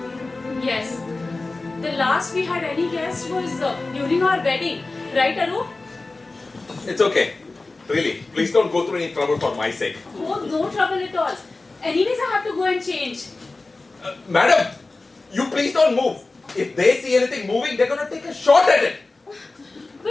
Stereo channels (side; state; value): right; quieter; 3.4 dB